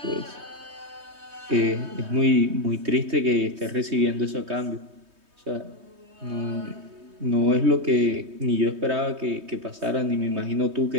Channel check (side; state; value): left; late; 3.2 ms